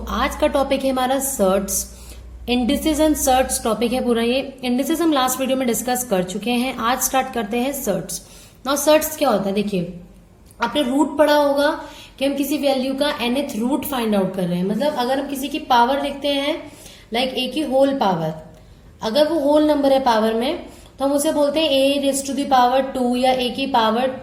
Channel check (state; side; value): identical; both; correlation 1.00